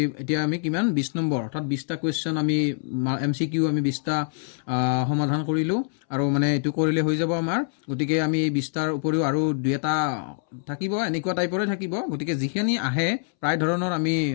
এতিয়া আমি কিমান 20 নম্বৰ অৰ্থাৎ 20টা কোৱেশ্চন আমি এমসিকিউ আমি 20টা সমাধান কৰিলো আৰু মানে এটো কৰিলে হৈ যাব আমাৰ গতিকে আমি এই 20টাৰ উপৰিও আৰু দুটা থাকিব এনেকুৱা টাইপৰে থাকিব গতিকে যিখিনি আহে প্ৰায় ধৰণৰ আমি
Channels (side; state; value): right; silent; 62 dB below the other